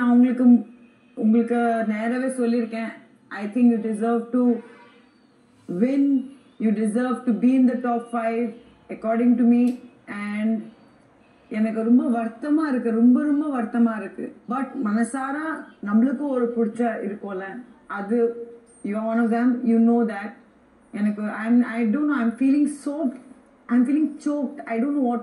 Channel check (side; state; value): both; identical; correlation 1.00